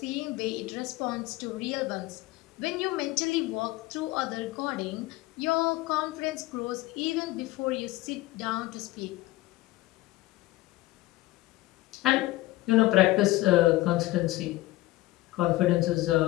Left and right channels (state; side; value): quieter; right; 17.9 dB